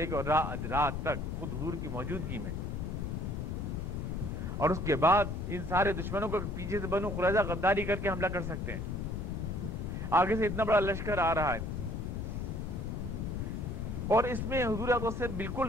کر رات تک خود حضور کی موجودگی میں. اور اس کے بعد ان سارے دشمنوں کو پیچھے سے بنو قریظہ غداری کر کے حملہ کر سکتے ہیں, آگے سے اتنا بڑا لشکر آ رہا ہے, اور اس میں حضور اقدس سے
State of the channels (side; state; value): left; noise; rumble, 3 dB below the sound